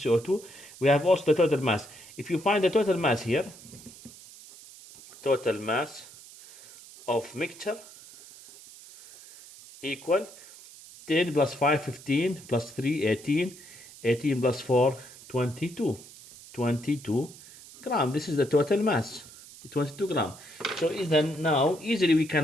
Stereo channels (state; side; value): noise; right; hiss, 19 dB below the sound